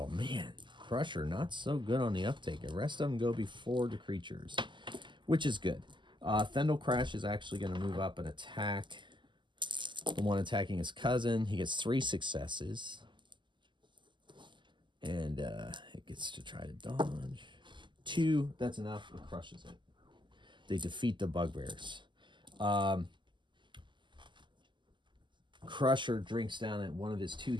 man. Crusher, not so good on the uptake. The rest of them go before the creatures, which is good. Thendel Crash is actually going to move up and attack the one attacking his cousin. He gets 3 successes. And it gets to try to dodge. 2, that's enough. It crushes it. They defeat the bugbears. Crusher drinks down at one of his 2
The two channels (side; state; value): left; late; 0.23 ms